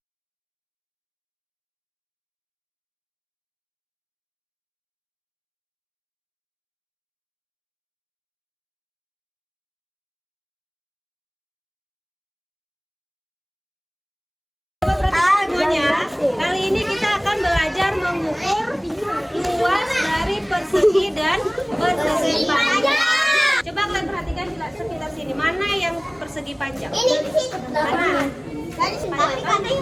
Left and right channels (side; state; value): both; identical; correlation 1.00